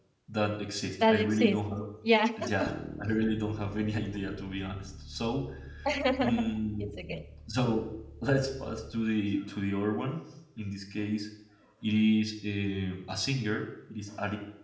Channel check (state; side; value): identical; both; correlation 1.00